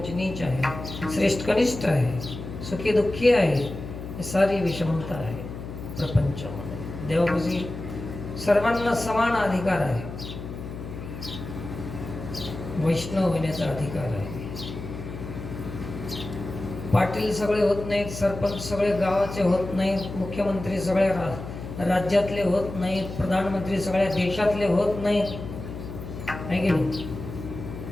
नीच आहे, श्रेष्ठ कनिष्ठ आहे, सुखी दुःखी आहे. ही सारी विषमता आहे प्रपंचामध्ये. देवापाशी सर्वांना समान अधिकार आहे. वैष्णव होण्याचा अधिकार आहे. पाटील सगळे होत नाहीत, सरपंच सगळे गावाचे होत नाहीत, मुख्यमंत्री सगळ्या राज्यातले होत नाहीत, प्रधानमंत्री सगळ्या देशातले होत नाहीत. आहे की नाही?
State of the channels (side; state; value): left; noise; hum, 10 dB below the sound